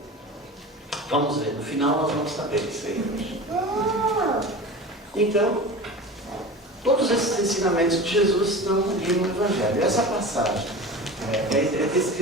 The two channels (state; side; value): normal; both; correlation 0.33